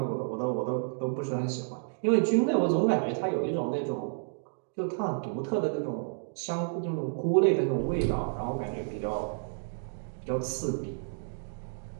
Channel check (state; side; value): silent; left; digital silence